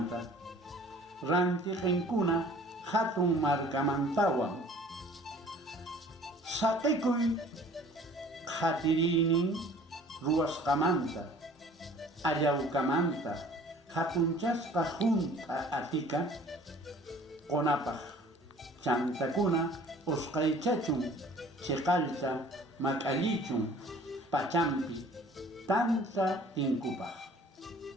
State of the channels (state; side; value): normal; both; correlation 0.50